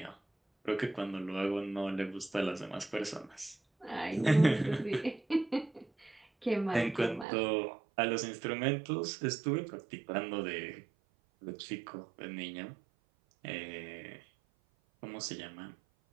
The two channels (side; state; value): left; drops out; at 7.2 s